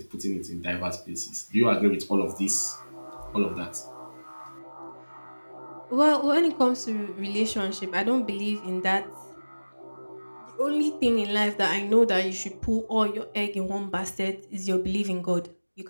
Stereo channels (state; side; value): inverted; both; correlation -1.00